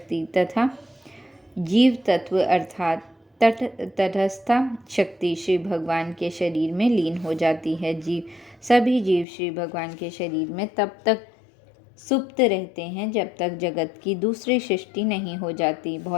तथा जीव तत्व अर्थात तटस्था शक्ति श्री भगवान के शरीर में लीन हो जाती है। सभी जीव श्री भगवान के शरीर में तब तक सुप्त रहते हैं जब तक जगत की दूसरी सृष्टि नहीं हो जाती।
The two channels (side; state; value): right; drops out; at 9.2 s